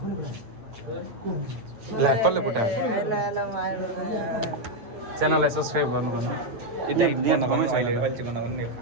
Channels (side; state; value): left; late; 9.0 ms